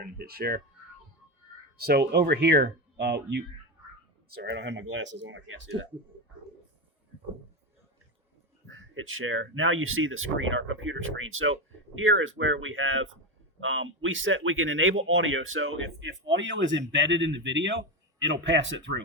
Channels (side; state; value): both; normal; correlation 0.14